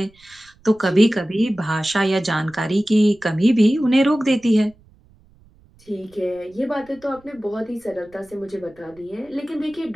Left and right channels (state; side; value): noise; right; rumble, 29 dB below the sound